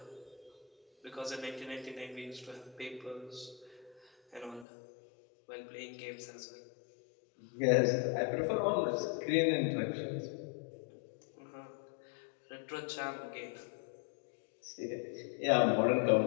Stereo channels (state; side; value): drops out; right; at 4.7 s